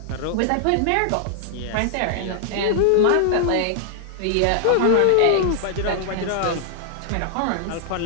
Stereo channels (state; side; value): different; both; correlation -0.01